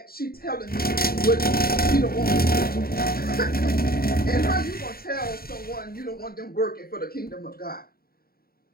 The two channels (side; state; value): right; late; 0.44 ms